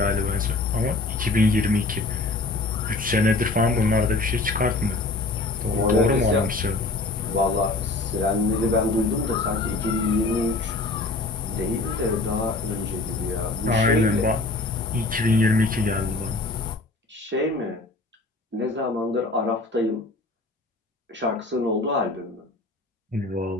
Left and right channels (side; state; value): right; quieter; 3.3 dB